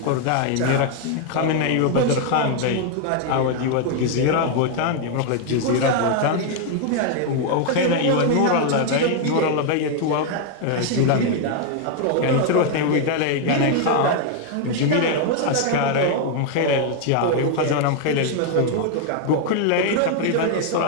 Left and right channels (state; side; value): different; both; correlation 0.00